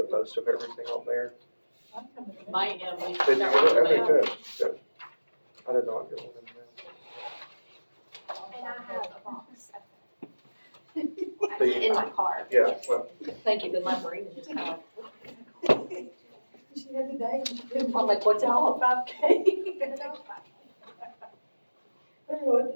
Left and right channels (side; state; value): both; inverted; correlation -1.00